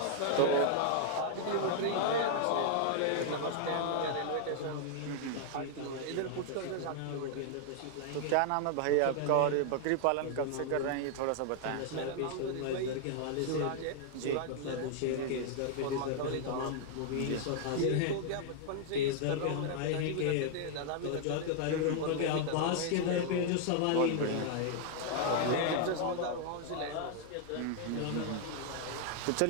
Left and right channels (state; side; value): different; both; correlation 0.00